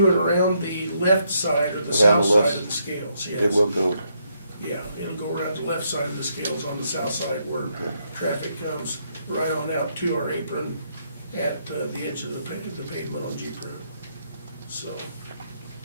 and around the left side or the Around south the left- side of the scales, yes. It will go, Yeah, it'll go around the left side of the scales on the south side where traffic comes right on out to our apron at the edge of the pavement on Jeep Road. So.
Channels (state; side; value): inverted; both; correlation -0.75